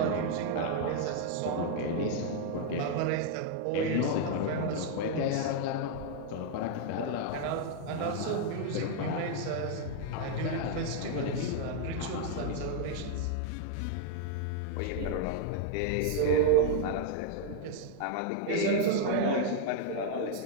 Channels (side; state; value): both; different; correlation 0.00